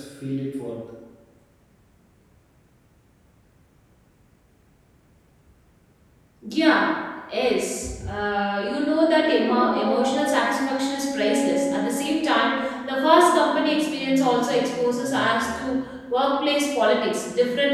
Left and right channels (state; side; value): identical; both; correlation 1.00